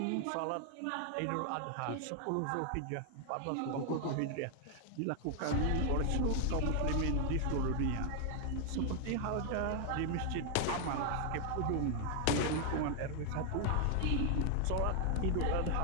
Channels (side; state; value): both; different; correlation 0.00